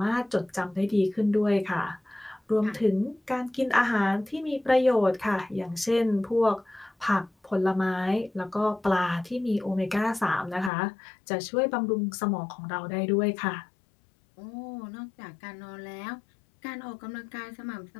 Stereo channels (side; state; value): right; drops out; at 10.7 s